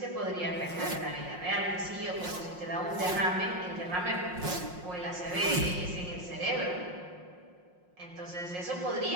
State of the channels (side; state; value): left; late; 5.6 ms